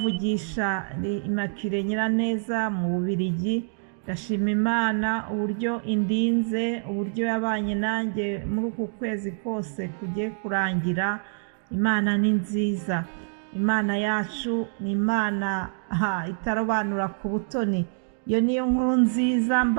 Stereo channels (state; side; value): silent; left; digital silence